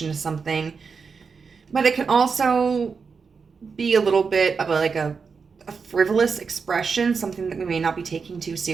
to something. But it can also be a little bit of a frivolous expression, something that we may not be taking too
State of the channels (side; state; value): left; quieter; 5.4 dB